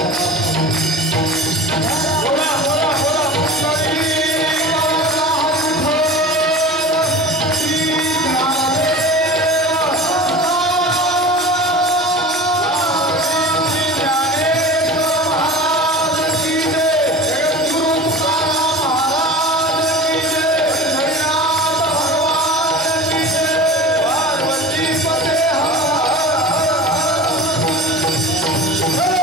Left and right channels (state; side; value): normal; both; correlation 0.36